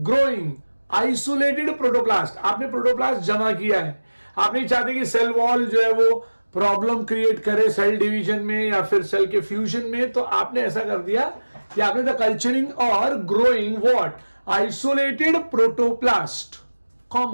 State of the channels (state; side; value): inverted; both; correlation -1.00